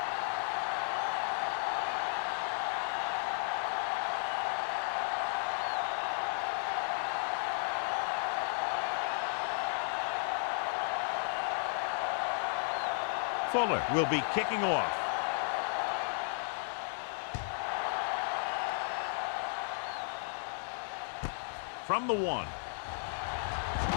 Fuller will be kicking off. From the 1.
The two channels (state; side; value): silent; right; 55 dB below the other